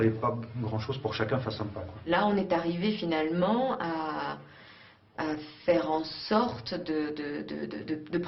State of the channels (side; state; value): both; identical; correlation 1.00